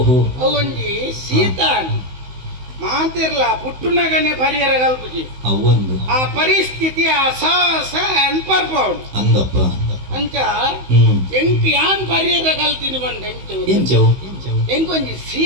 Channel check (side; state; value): left; late; 16 ms